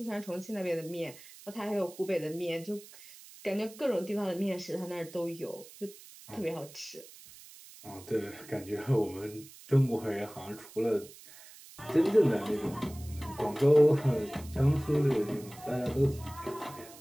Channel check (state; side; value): noise; right; hiss, 19 dB below the sound